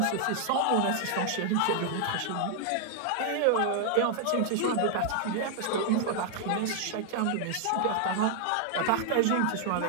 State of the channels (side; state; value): both; different; correlation 0.00